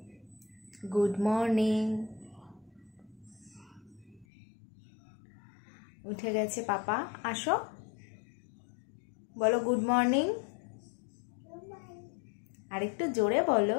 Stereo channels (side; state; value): right; drops out; at 4.2 s